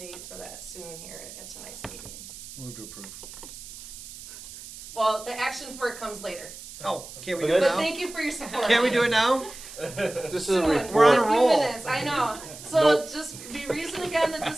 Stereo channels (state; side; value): noise; right; hiss, 14 dB below the sound